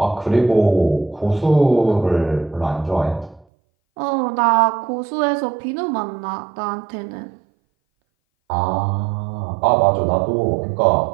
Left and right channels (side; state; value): left; drops out; at 3.5 s